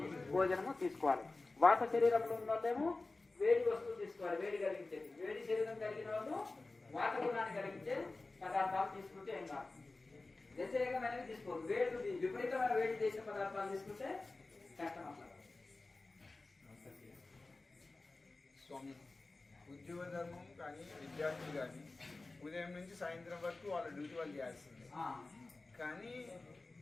భోజనము తీసుకోవాలి. వాత శరీరంలో ఉన్న వాళ్ళేమో వేడి వస్తువులు తీసుకోవాలి, వేడి కలిగించేది. వేడి శరీరం కలిగిన వాళ్ళు వాత గుణాన్ని కలిగించే పదార్థాలు తీసుకుంటే ఏం కాదు. వ్యతిరేకమైనవి తీసుకోవాలి. వేడి విపరీతమైన వేడి చేసే పదార్థాలు తీసుకుంటే కష్టం అట్లా. స్వామి, ఉద్యోగ ధర్మం కానీ విద్యార్థులు కానీ ఉదయం నుంచి సాయంత్రం వరకు వాళ్ళ డ్యూటీ వాళ్ళు చేయాల్సిందే. కానీ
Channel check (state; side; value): quieter; right; 3.3 dB